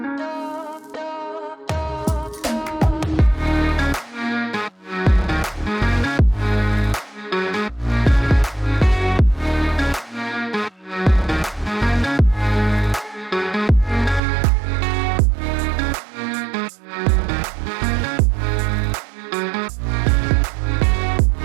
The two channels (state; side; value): drops out; left; at 14.2 s